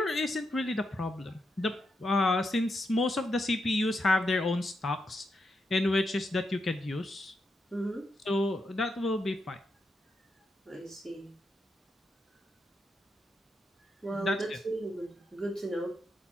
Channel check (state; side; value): normal; both; correlation 0.84